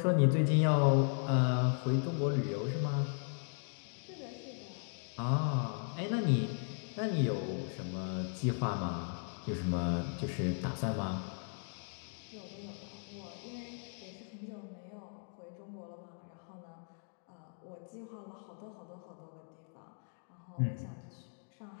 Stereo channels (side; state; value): right; silent; 53 dB below the other